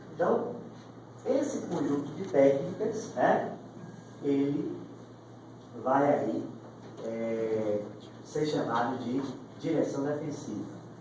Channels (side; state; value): both; identical; correlation 1.00